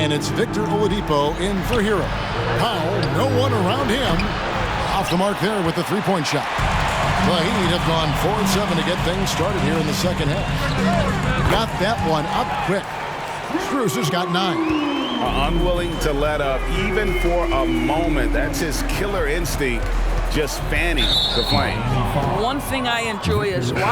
it's Victor Oladipo in for Hero. Powell, no one around him. Off the mark there with the three-point shot. The Heat have gone 4-7 to get things started here in the second half. Got that one up quick. Strus has got 9. Unwilling to let up even for a moment. That's his killer instinct, just fanning the flame. One thing I enjoy is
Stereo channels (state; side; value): identical; both; correlation 1.00